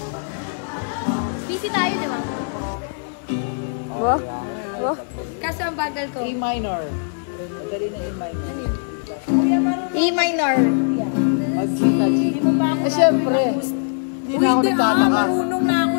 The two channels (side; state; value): right; silent; 56 dB below the other